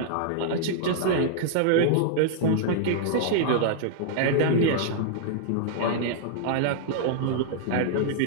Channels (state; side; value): different; both; correlation -0.01